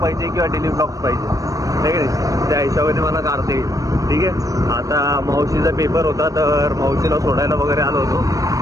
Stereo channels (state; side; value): late; left; 0.16 ms